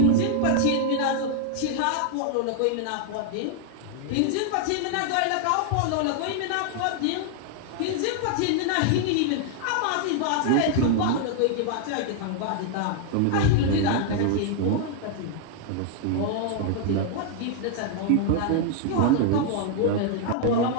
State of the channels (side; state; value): both; different; correlation 0.00